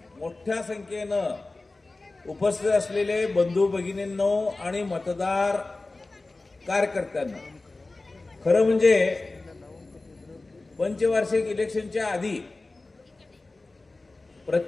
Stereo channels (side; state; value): right; quieter; 3.2 dB